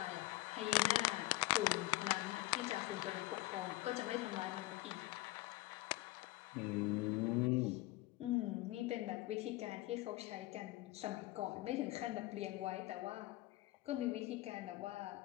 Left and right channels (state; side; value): quieter; right; 19.3 dB